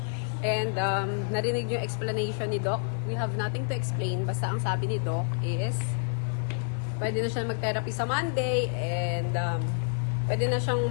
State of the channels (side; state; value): right; silent; 59 dB below the other